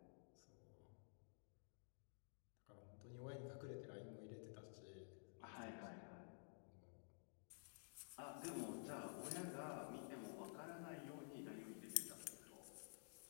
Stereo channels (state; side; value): silent; right; digital silence